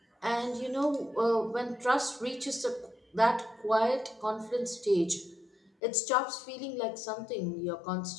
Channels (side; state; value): right; drops out; at 5.7 s